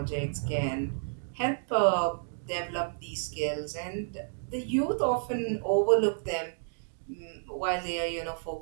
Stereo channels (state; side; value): silent; left; digital silence